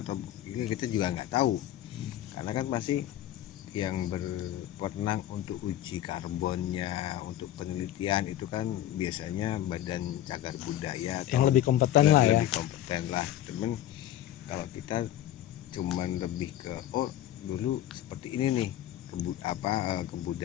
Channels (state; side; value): quieter; right; 12.7 dB